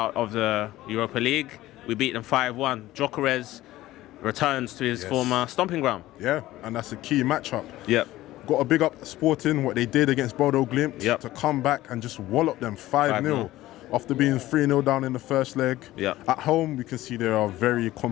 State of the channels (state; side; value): quieter; right; 16.1 dB